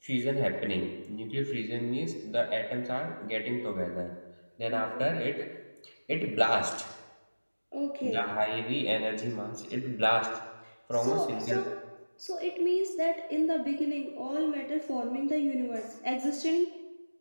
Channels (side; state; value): both; inverted; correlation -1.00